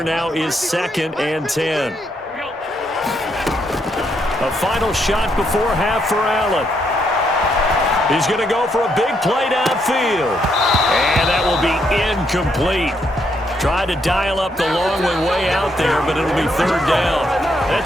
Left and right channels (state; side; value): normal; both; correlation 0.76